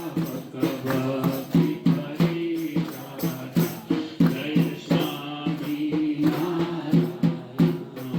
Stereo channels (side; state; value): both; identical; correlation 1.00